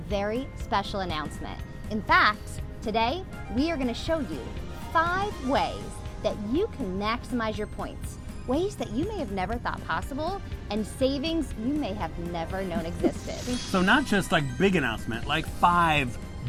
special announcement. In fact, today we are going to show you 5 ways that you can maximize your points. Ways that you may have never thought possible, and savings you may have never known existed. So not just like big announcement, like 5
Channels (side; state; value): both; identical; correlation 1.00